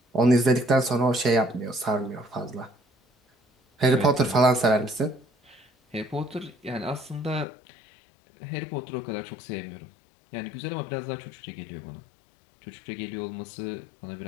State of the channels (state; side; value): drops out; right; at 7.5 s